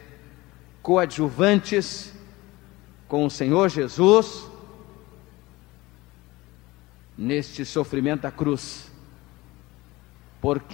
coadjuvantes com o Senhor Jesus neste sofrimento da cruz,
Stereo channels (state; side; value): quieter; right; 20.4 dB